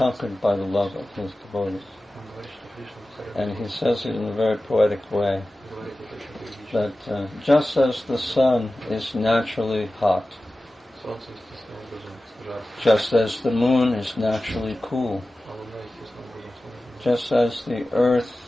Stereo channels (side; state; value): both; normal; correlation 0.95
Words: by the love of his devotees. And he says it in a very poetic way, that just as the sun is naturally hot, just as the moon is naturally cool, just as the